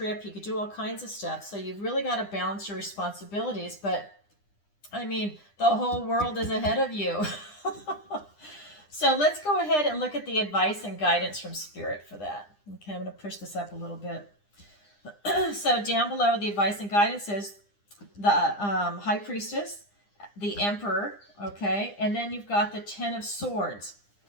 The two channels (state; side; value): late; right; 9.9 ms